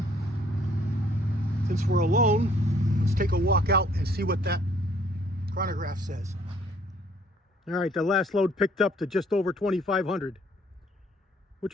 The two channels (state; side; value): normal; both; correlation 0.62